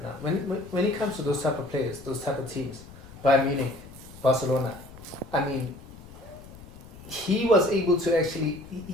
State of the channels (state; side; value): noise; left; rumble, 18 dB below the sound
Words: now. When it comes to those type of players, those type of teams, Bayern Munich, Barcelona, I mean, he was able to actually